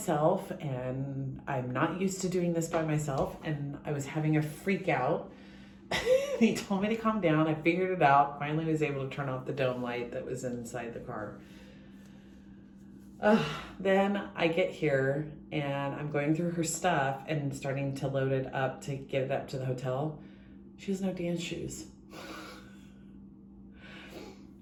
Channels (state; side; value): identical; both; correlation 1.00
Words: and I'm not used to doing this by myself, and I was having a freak out. He told me to calm down. I figured it out. Finally was able to turn off the dome light that was inside the car. Then I get here and I'm going through her stuff and starting to load it up to get it up to the hotel. She has no dance shoes.